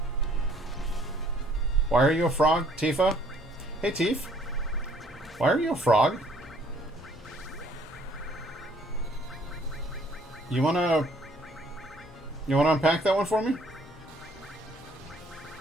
Why are you a frog, Tifa? Hey, Tifa. Why are you a frog? You wanna unpack that one for me?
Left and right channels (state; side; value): normal; both; correlation 0.61